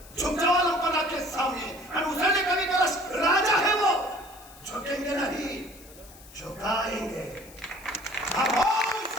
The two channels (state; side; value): noise; left; hiss, 21 dB below the sound